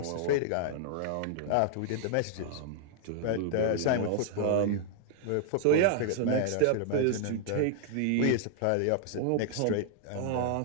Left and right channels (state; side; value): different; both; correlation -0.01